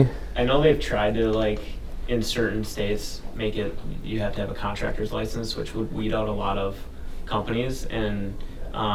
I know they've tried to, like, in certain states, make it, you have to have a contractor's license, which would weed out a lot of companies. And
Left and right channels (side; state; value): both; identical; correlation 1.00